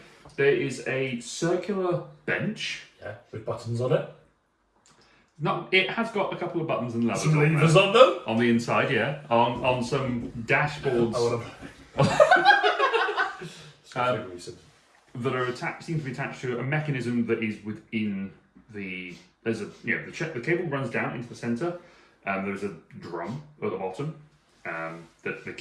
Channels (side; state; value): both; identical; correlation 1.00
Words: there is a circular bench. Yeah, with buttons on it. It has got a couple of buttons and levers Some on, levers there. on them. On the inside, yeah. On some dashboards I want Um, to. Recent. that are seem to be attached to a mechanism that is within the. There's the cable runs down into the centre, and there's a drum at the bottom. that the